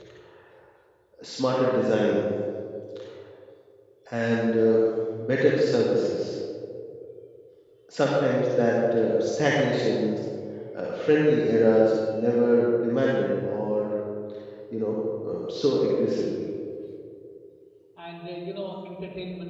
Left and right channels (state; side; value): identical; both; correlation 1.00